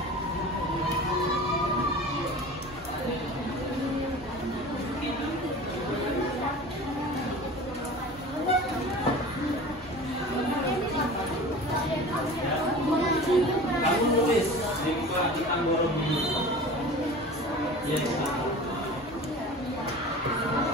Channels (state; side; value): normal; both; correlation 0.38